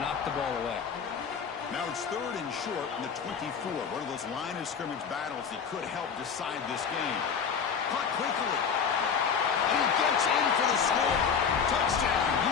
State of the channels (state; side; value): quieter; right; 6.6 dB